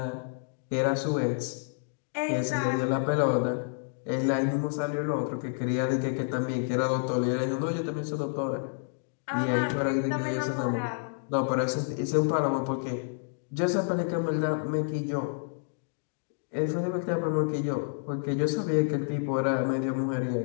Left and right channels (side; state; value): right; silent; digital silence